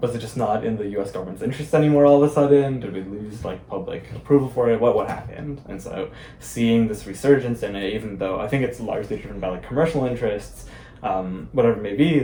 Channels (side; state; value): both; identical; correlation 1.00